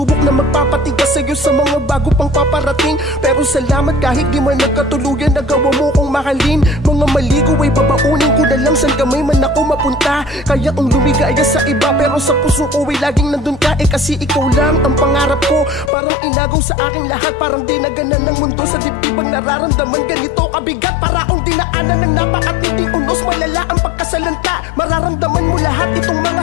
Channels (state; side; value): drops out; right; at 15.9 s